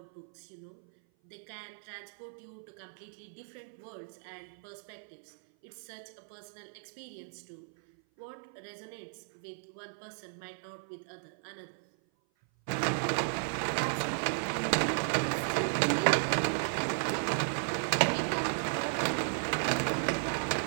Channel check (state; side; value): silent; left; 55 dB below the other